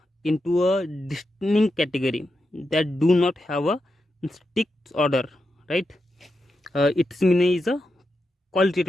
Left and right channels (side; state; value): both; normal; correlation 0.87